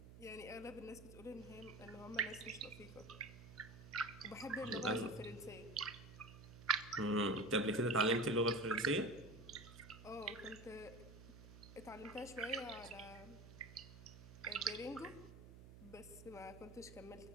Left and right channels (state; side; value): noise; right; hum, 16 dB below the sound